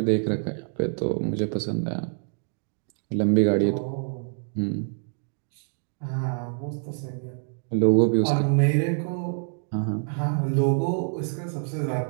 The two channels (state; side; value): silent; left; 58 dB below the other